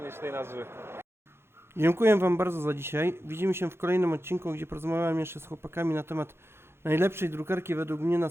tej nazwy? Dziękuję Wam bardzo za dzisiaj. Widzimy się w kolejnym odcinku, gdzie porozmawiam jeszcze z chłopakami na temat najlepszej drukarki według mnie na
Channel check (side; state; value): left; late; 0.12 ms